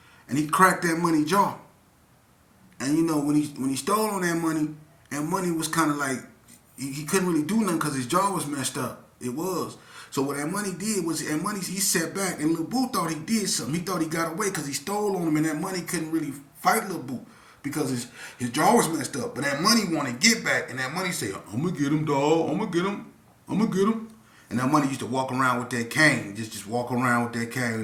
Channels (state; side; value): identical; both; correlation 1.00